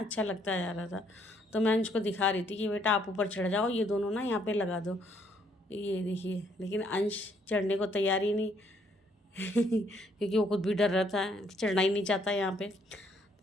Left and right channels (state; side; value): normal; both; correlation 0.68